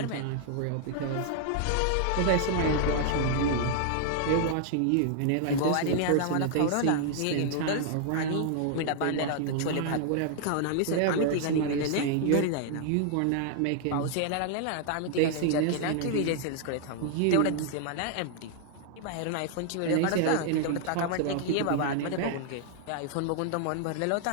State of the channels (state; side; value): different; both; correlation 0.00